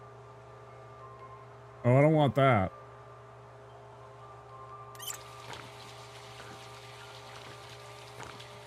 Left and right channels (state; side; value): identical; both; correlation 1.00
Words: Oh, I don't want that.